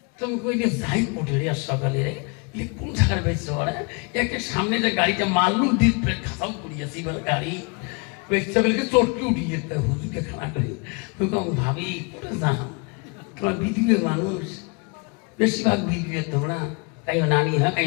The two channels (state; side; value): quieter; right; 32.1 dB